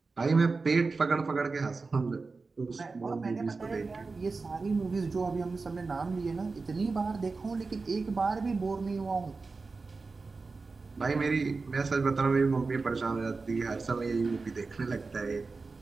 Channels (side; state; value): left; quieter; 4.1 dB